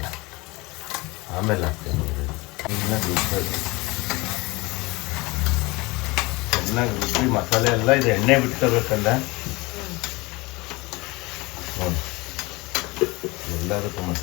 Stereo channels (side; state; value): right; quieter; 23.8 dB